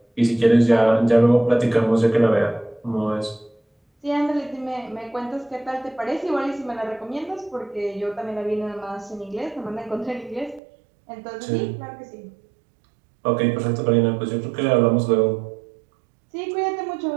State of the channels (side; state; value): left; drops out; at 10.6 s